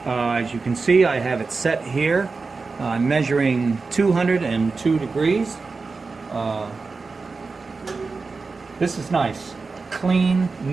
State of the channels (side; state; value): left; quieter; 4.2 dB